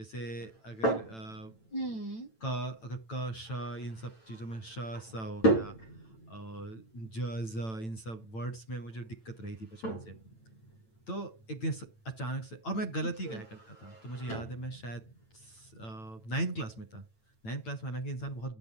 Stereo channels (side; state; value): right; late; 9.0 ms